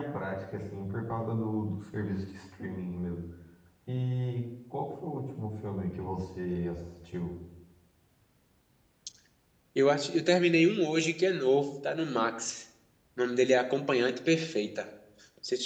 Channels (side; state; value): both; identical; correlation 1.00